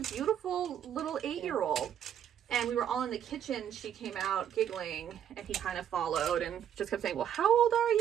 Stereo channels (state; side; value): quieter; left; 9.6 dB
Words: beautiful little 8-year-old. And we were all in the kitchen. She came out giggling, and he kind of followed and just kept saying, "Well, how old are